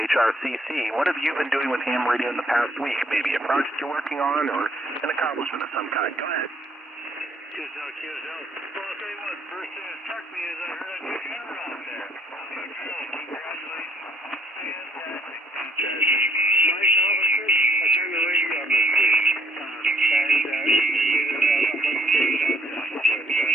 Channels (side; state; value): both; normal; correlation 0.65